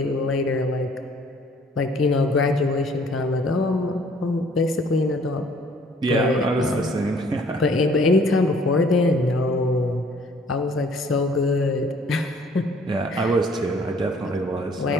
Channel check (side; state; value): both; normal; correlation 0.58